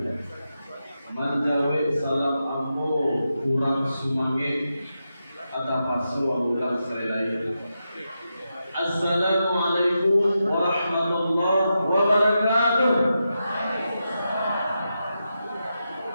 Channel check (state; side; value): inverted; both; correlation -0.88